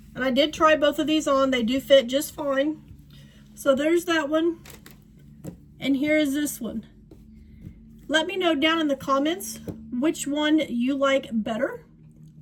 And I did try both of these on. They do fit just fine. So there's that one. And here is this one. Let me know down in the comments which one you like better.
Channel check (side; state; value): both; identical; correlation 1.00